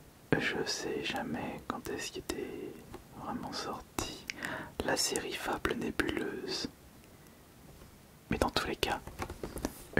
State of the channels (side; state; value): both; identical; correlation 1.00